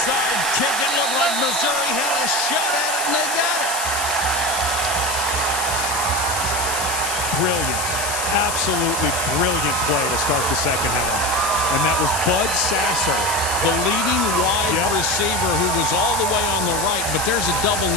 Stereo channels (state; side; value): noise; left; hiss, 3 dB below the sound